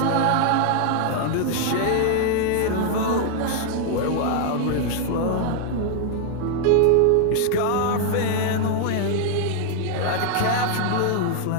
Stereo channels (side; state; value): both; different; correlation 0.00